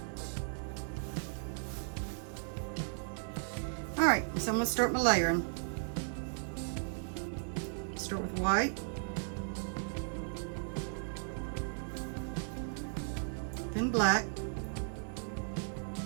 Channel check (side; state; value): left; silent; digital silence